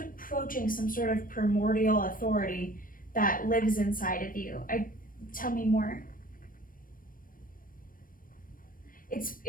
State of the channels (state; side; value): late; right; 0.40 ms